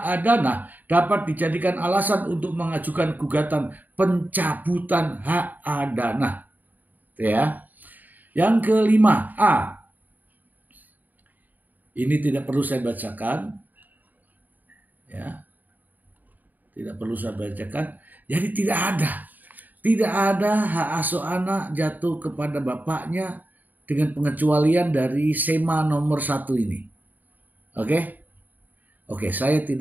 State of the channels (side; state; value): left; late; 0.085 ms